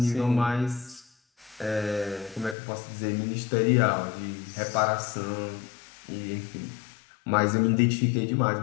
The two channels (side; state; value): right; drops out; at 2.6 s